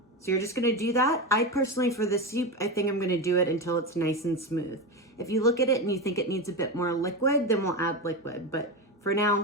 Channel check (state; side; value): normal; both; correlation 0.18